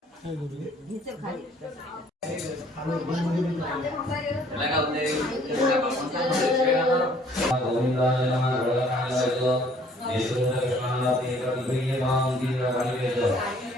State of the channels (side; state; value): both; normal; correlation 0.59